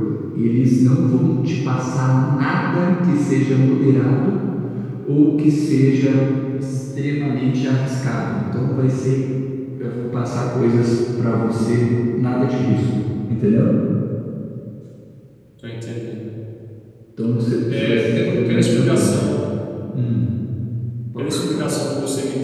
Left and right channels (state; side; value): identical; both; correlation 1.00